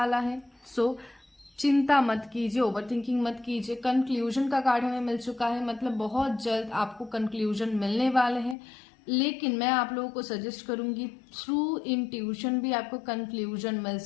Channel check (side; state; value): right; drops out; at 8.6 s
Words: है। सो चिंता मत कीजिए, ओवरथिंकिंग मत कीजिए। कंक्लूजन का कार्ड हमें मिल चुका है, मतलब बहुत जल्द आपको कंक्लूजन मिलने वाले हैं। लेकिन मैं आप लोगों को सजेस्ट करूंगी थ्रू इंट्यूशन भी आपको कंक्लूजन मिल